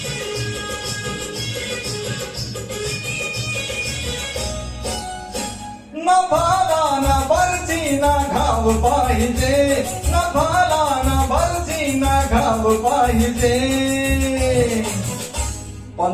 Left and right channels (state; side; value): identical; both; correlation 1.00